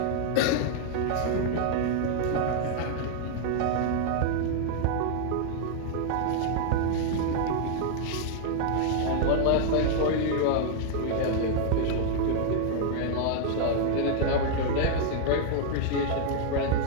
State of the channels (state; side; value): different; both; correlation -0.01